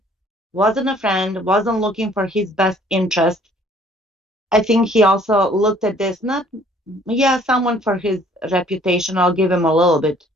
wasn't a friend, wasn't looking for his best interest. I think he also looked at this, someone for his reputation. I'll give him a little bit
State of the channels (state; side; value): normal; both; correlation 0.58